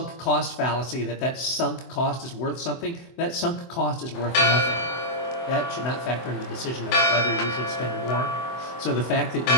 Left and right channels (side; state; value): right; late; 24 ms